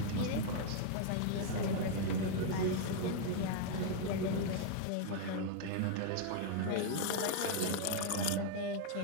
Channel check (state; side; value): different; both; correlation 0.00